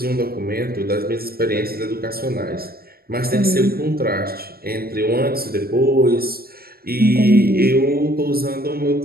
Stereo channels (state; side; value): late; left; 0.44 ms